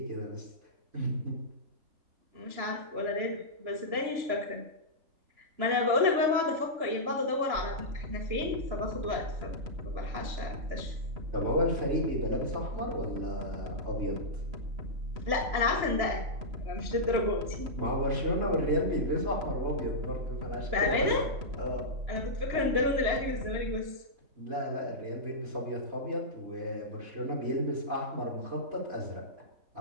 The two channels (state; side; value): late; left; 3.0 ms